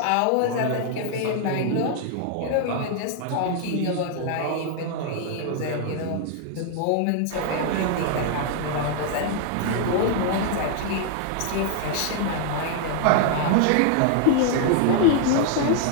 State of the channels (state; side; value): different; both; correlation 0.00